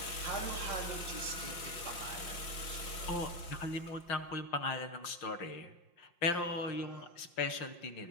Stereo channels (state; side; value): late; right; 5.7 ms